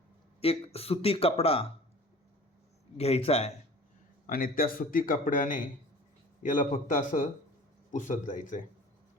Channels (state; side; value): normal; both; correlation 0.43